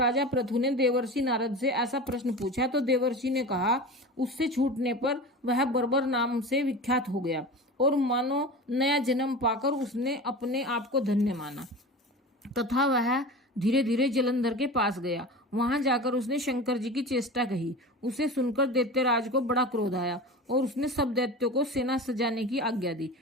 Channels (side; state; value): both; normal; correlation 0.32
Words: पृथु ने देवर्षि नारद से ऐसा प्रश्न पूछा तो देवर्षि ने कहा, उससे छूटने पर वह बर्बर नाम से विख्यात हो गया और मानो नया जन्म पाकर उसने अपने आप को धन्य माना तथा वह धीरे धीरे जलंधर के पास गया। वहां जाकर उसने शंकर जी की चेष्टा कही। उसे सुनकर दैत्यराज को बड़ा क्रोध आया और उसने सब दैत्यों को सेना सजाने की आज्ञा दी।